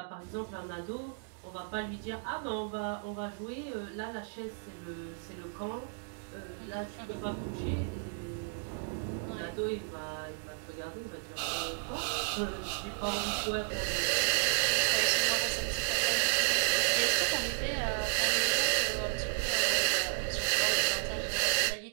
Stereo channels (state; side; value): silent; left; digital silence